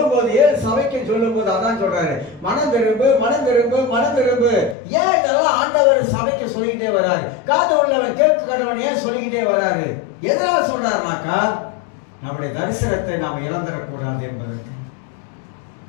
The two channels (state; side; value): drops out; right; at 4.8 s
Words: போது, ஏன் சபைக்கு சொல்லும் போது அதான் சொல்றாரு, மனம் திரும்பு, மனம் திரும்பு, மனம் திரும்பு. ஏன் இதெல்லாம் ஆண்டவர் சபைக்கு சொல்லிக்கிட்டே வர்றாரு? காது உள்ளவன் கேட்க கடவன் ஏன் சொல்லிக்கிட்டே வர்றாரு? எதனால சொல்றாருனாக்கா, நம்முடைய தரிசனத்தை நாம் இழந்துடக்கூடாது என்பதற்கு.